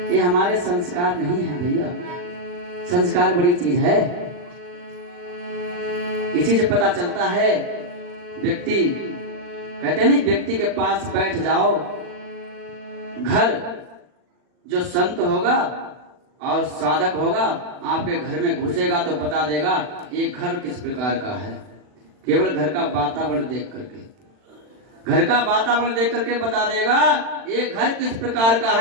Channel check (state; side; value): late; left; 40 ms